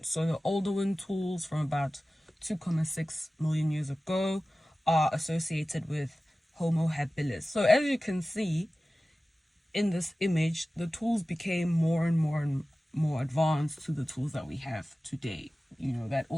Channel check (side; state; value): both; normal; correlation 0.96